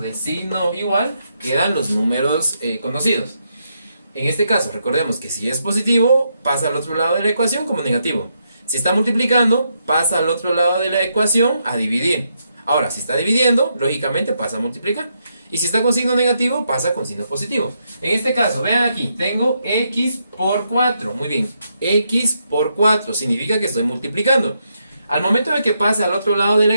signo igual quedan los números conocidos. En este caso, recordemos que si es positivo, pasa al otro lado de la ecuación como negativo. Si está multiplicando, pasa al otro lado de la ecuación a dividir. Ahora, si está dividiendo, lógicamente pasa a multiplicar. Y si está con signo negativo, pasa con signo positivo. En este caso, vean aquí, tengo X por 4. Muy bien, X por 4 significa que estoy multiplicando. Al momento de que pase al otro lado de la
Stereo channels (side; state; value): both; inverted; correlation -0.80